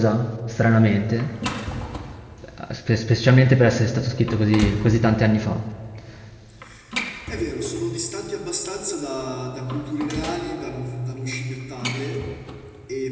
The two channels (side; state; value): both; identical; correlation 1.00